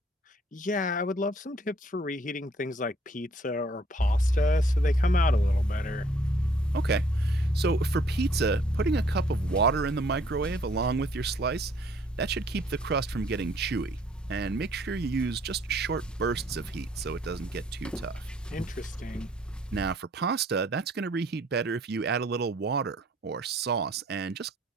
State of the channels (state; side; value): normal; both; correlation 0.61